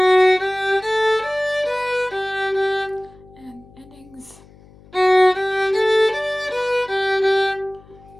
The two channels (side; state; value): left; noise; hum, 25 dB below the sound